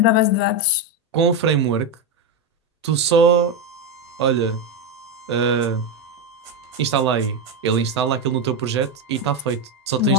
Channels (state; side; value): normal; both; correlation 0.09